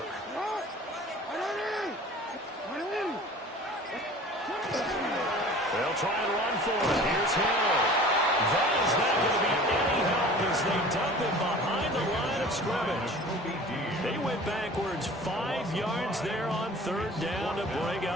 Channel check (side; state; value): both; normal; correlation 0.43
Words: They'll try and run for it. Here's Hill. That is not going to be any help as they dump him behind the line of scrimmage. They went backwards 5 yards there on third down to bring